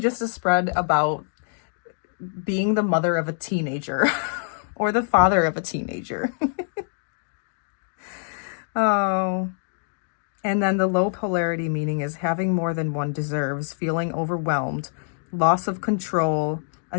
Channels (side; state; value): right; silent; digital silence